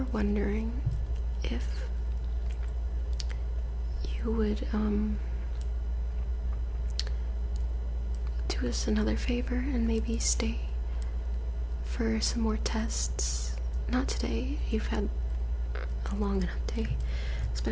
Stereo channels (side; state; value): both; identical; correlation 1.00